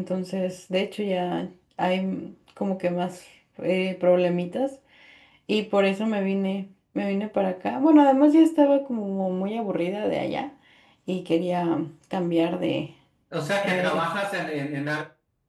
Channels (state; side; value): identical; both; correlation 1.00